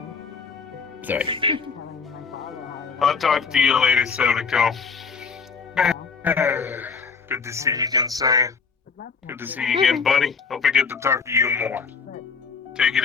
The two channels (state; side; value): quieter; right; 5.4 dB